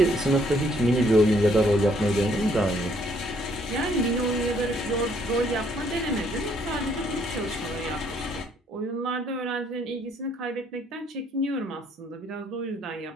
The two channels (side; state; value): both; normal; correlation 0.67